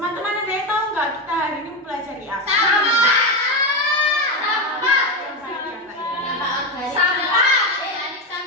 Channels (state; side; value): normal; both; correlation 0.14